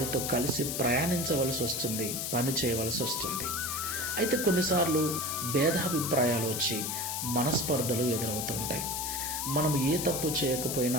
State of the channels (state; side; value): noise; left; hiss, 2 dB below the sound